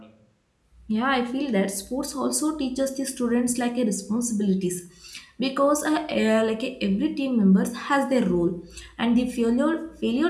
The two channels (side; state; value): both; identical; correlation 1.00